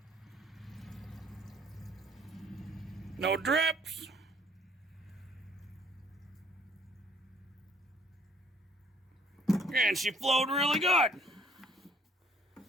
No drips. And she flowed really good.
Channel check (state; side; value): normal; both; correlation 0.62